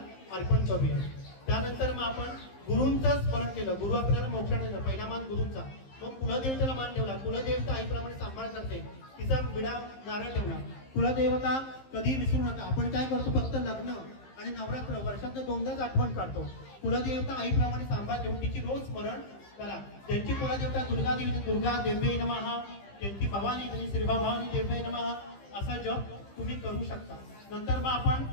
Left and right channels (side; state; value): right; late; 15 ms